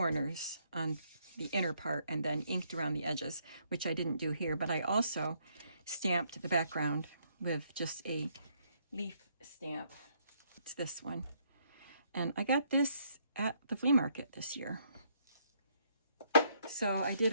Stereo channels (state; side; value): inverted; both; correlation -0.70